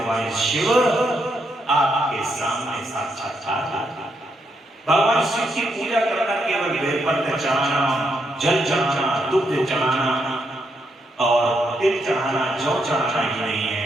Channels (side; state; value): both; normal; correlation 0.78